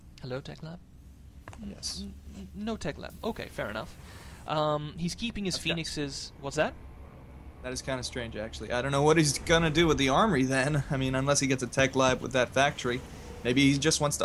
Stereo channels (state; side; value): identical; both; correlation 1.00